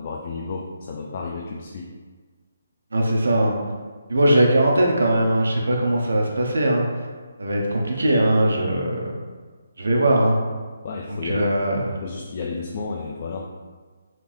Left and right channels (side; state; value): both; inverted; correlation -0.84